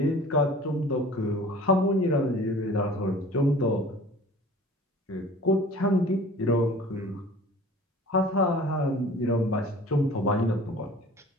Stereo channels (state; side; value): normal; both; correlation 0.45